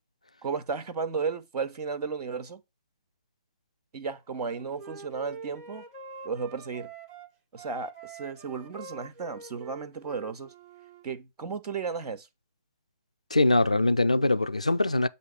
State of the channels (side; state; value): both; inverted; correlation -0.73